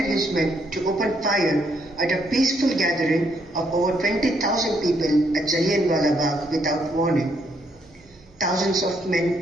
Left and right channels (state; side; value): noise; right; hum, 30 dB below the sound